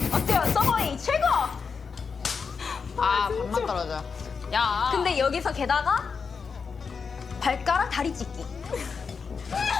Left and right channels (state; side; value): quieter; right; 5.5 dB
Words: 어때요? 서버이 최고! 아 밥만 떨어져. 야. 근데 여기서 게다가 발가락 다리 찢기.